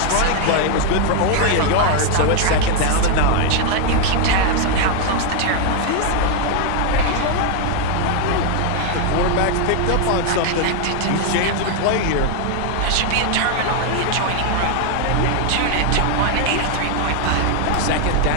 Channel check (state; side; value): different; both; correlation 0.00